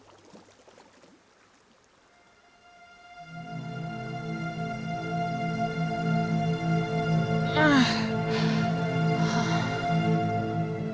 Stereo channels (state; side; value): identical; both; correlation 1.00